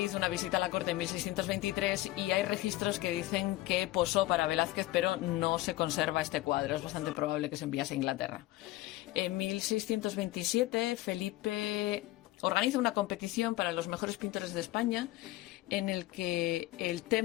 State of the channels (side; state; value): right; quieter; 17.4 dB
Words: hizo una visita a la corte en 1623 y hay registros que dicen que posó para Velázquez, pero no se conserva este cuadro. Es bastante probable que se enviase a Inglaterra. En 1627, Felipe organiza una competición para los mejores pintores de España, en el que el